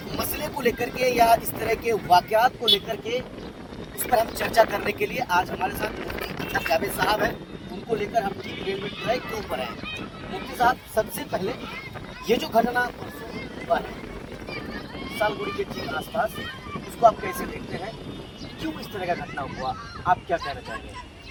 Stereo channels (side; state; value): both; identical; correlation 1.00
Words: मसले को लेकर के या इस तरह के वाकयात को लेकर के उस पर हम चर्चा करने के लिए आज हमारे साथ मुफ्ती जावेद साहब हैं। उनको लेकर हम ठीक रेलवे ट्रैक के ऊपर हैं। मुफ्ती साहब, सबसे पहले ये जो घटना हुआ है सालगुड़ी के ठीक आसपास, उसको आप कैसे देखते हैं? क्यों इस तरह का घटना हुआ, आप क्या कहना चाहेंगे?